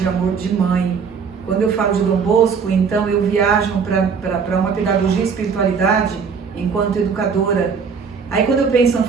amor de mãe. Quando eu falo de Dom Bosco, então eu viajo para uma pedagogia e espiritualidade enquanto educadora. Aí quando eu penso em São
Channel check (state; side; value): quieter; left; 5.9 dB